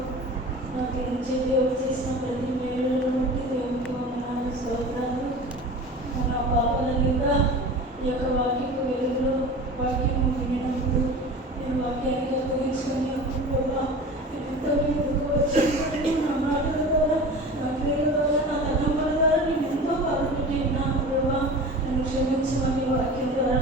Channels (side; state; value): both; normal; correlation 0.35